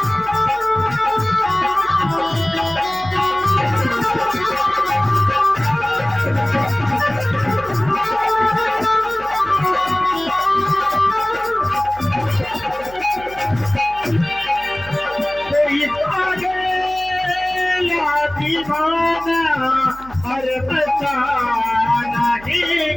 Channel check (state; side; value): noise; right; hum, 19 dB below the sound